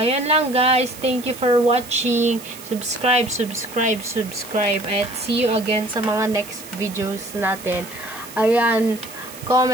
lang, guys. Thank you for watching. Subscribe. At see you again sa mga next videos natin. Ayan.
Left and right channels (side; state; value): right; noise; hiss, 16 dB below the sound